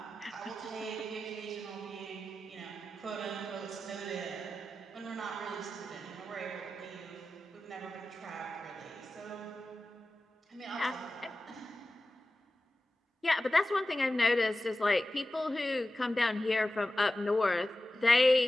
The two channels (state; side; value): normal; both; correlation 0.94